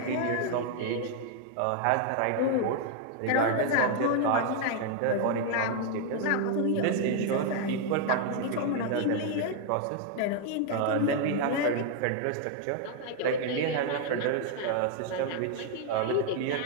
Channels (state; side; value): different; both; correlation 0.00